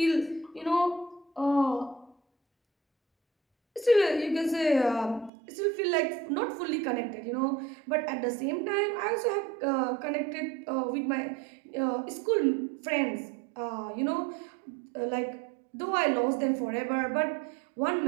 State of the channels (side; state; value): left; drops out; at 5.3 s